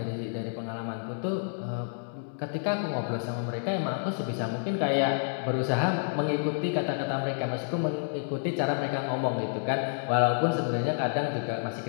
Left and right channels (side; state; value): right; silent; 58 dB below the other